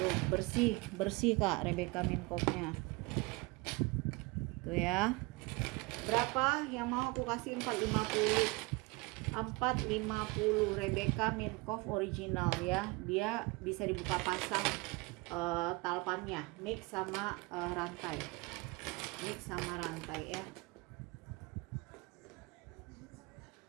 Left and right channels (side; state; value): left; quieter; 25.1 dB